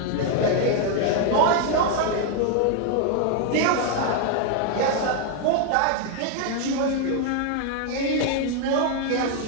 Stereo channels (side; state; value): both; different; correlation 0.00